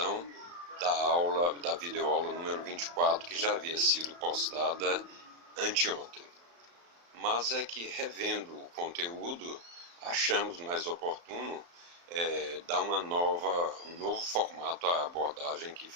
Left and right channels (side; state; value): left; late; 35 ms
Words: da videoaula número 24 que já havia sido postada anteontem. Mas é que revendo o conteúdo, achamos mais oportuno dar um novo formato à abordagem que